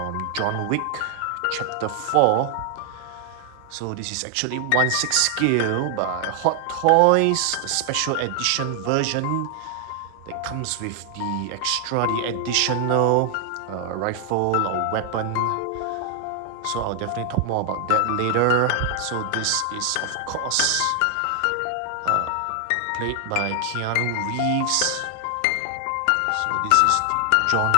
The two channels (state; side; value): different; both; correlation 0.00